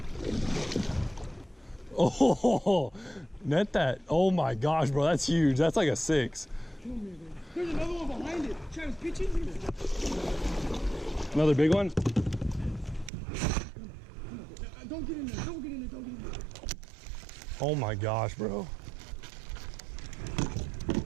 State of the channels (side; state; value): left; drops out; at 13.1 s